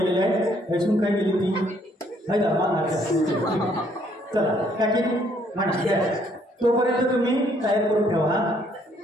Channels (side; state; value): both; normal; correlation 0.66